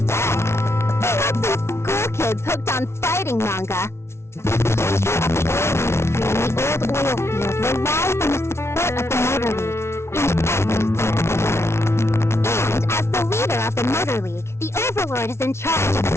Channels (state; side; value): late; right; 0.13 ms